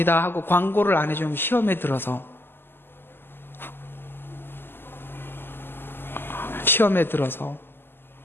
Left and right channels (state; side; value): late; right; 0.10 ms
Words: 하고 광고를 안 해주면 시험에 들어서